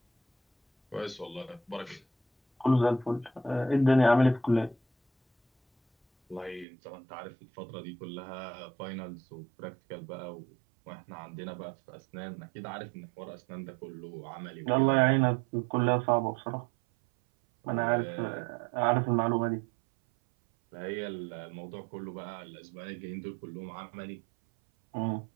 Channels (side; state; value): left; drops out; at 6.7 s